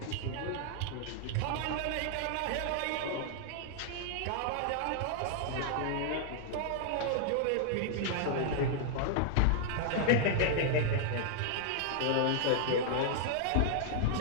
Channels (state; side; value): different; both; correlation -0.01